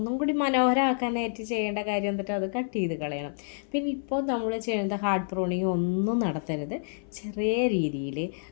കൂടി മനോഹരമാക്കാനായിട്ട് ചെയ്യേണ്ട കാര്യം എന്നിട്ട് അത് കട്ട് ചെയ്ത് കളയണം. പിന്നെ ഇപ്പോൾ നമ്മൾ ചെയ്യുന്നത് ഹാർഡ് പ്രൂണിങ് ഒന്നും നടത്തരുത്. ചെറിയ രീതിയിൽ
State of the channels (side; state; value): right; silent; 58 dB below the other